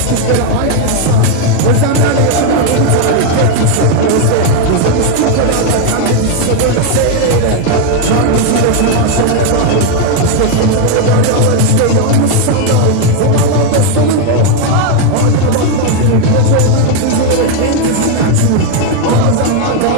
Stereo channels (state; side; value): different; both; correlation 0.01